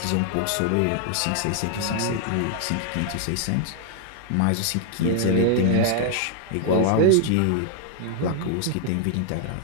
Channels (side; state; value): both; different; correlation 0.00